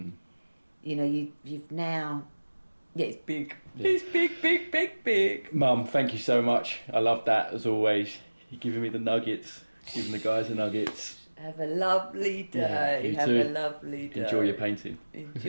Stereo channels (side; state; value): both; inverted; correlation -1.00